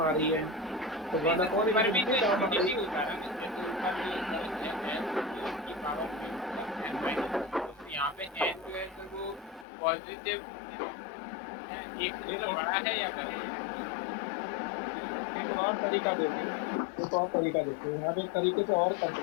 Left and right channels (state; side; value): drops out; right; at 9.7 s